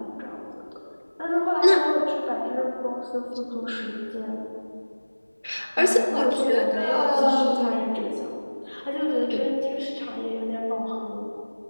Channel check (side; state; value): both; inverted; correlation -1.00